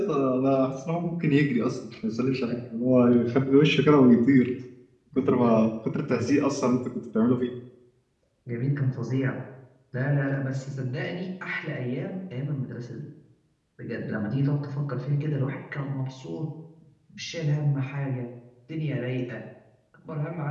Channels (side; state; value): both; identical; correlation 1.00